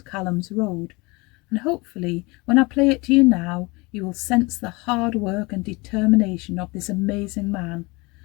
Calum's Road, and hopefully when I play it to you now you will sense the hard work and determination of this amazing man,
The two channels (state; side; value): quieter; right; 25.4 dB